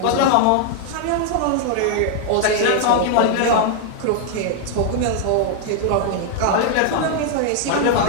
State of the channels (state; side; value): different; both; correlation -0.01